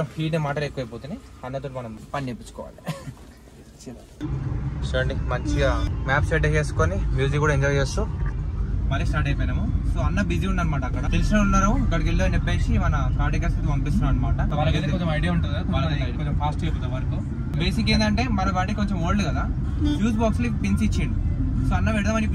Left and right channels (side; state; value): both; identical; correlation 1.00